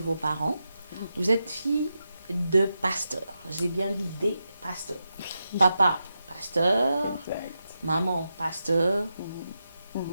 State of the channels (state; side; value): inverted; both; correlation -0.88